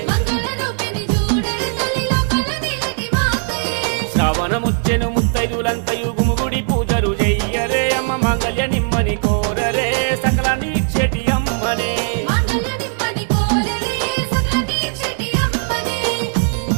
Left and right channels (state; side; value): silent; left; 60 dB below the other